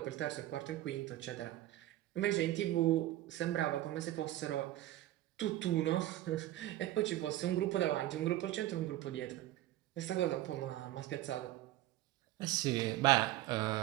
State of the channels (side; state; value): left; quieter; 15.1 dB